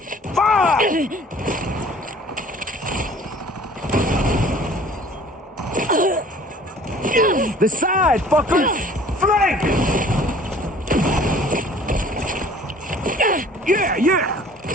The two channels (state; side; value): normal; both; correlation 0.51